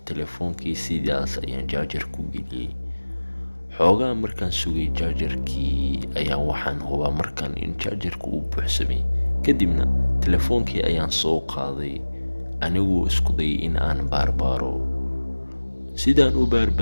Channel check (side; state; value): both; inverted; correlation -1.00